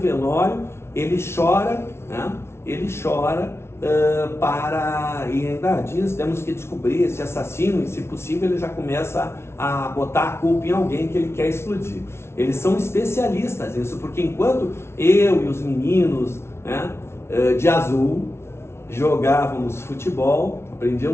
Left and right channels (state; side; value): late; right; 0.12 ms